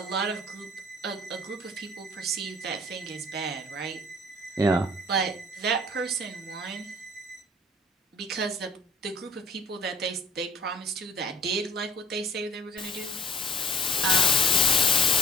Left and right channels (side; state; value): both; normal; correlation 0.47